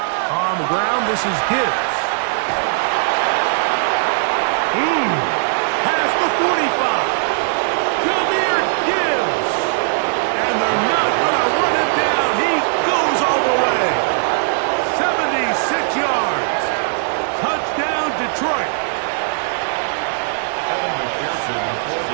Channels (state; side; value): silent; left; digital silence